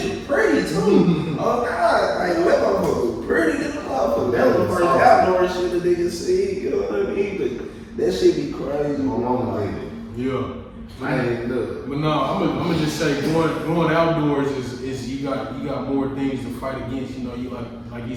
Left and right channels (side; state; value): both; identical; correlation 1.00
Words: was pretty too. Oh God, like that motherfucker was pretty than the motherfucker. That was the first outdoor shit the nigga see. You know what I mean? But that shit be crazy. My mama like it. Yeah. I ain't even do it. But no, I'm gonna just say going outdoors is you got more things to fight against. You know, you like you